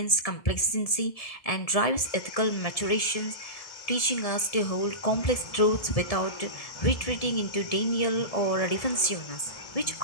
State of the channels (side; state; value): right; late; 1.7 ms